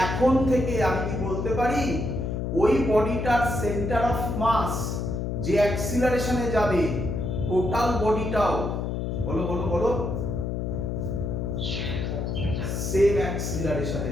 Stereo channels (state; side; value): noise; left; hum, 2 dB below the sound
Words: এখন থেকে আমি কি বলতে পারি ওই বডিটার সেন্টার অফ মাস যে অ্যাক্সিলারেশনে যাবে টোটাল বডিটাও বলো বলো বলো সেম অ্যাক্সিলারেশনে